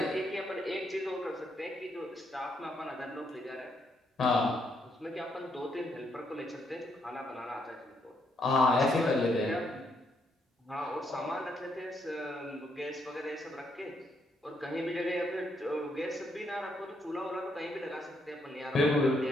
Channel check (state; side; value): normal; both; correlation 0.75